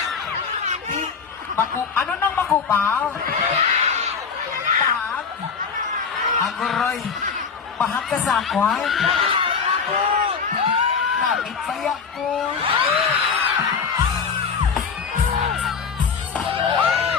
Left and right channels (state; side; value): quieter; right; 5.8 dB